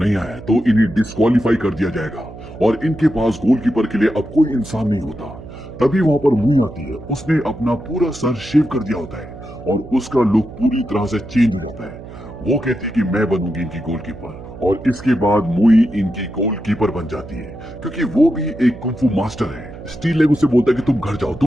आया तो इन्हें डिस्क्वालीफाई कर दिया जाएगा और इनके पास गोलकीपर के लिए अब कोई इंसान नहीं होता। तभी वहां पर मुई आती है, उसने अपना पूरा सर शेव कर दिया होता है और उसका लुक पूरी तरह से चेंज हो जाता है। वो कहती है कि मैं बनूंगी इनकी गोलकीपर और इसके बाद मुई इनकी गोलकीपर बन जाती है क्योंकि वो भी एक कुंफू मास्टर है। स्टील लेग उसे बोलता है कि तुम घर जाओ,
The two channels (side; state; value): right; noise; hum, 15 dB below the sound